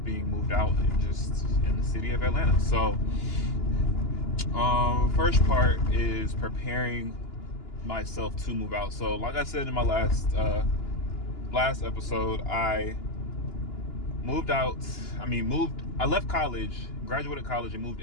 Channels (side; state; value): right; late; 2.9 ms